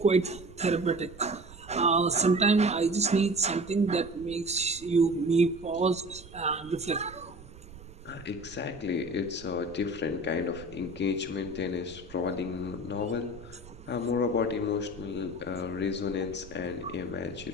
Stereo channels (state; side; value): noise; right; rumble, 18 dB below the sound